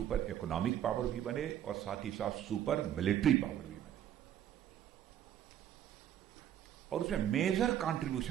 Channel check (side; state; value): left; quieter; 10.8 dB